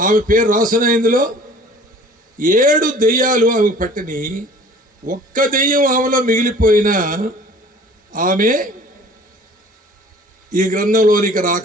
పేరు రాసిన ఇందులో 7 దెయ్యాలు ఆమెకు పట్టిని. ఒక్క దెయ్యం ఆమెలో మిగిలిపోయినా ఆమె ఈ గ్రంథంలోనికి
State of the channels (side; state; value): both; normal; correlation 0.48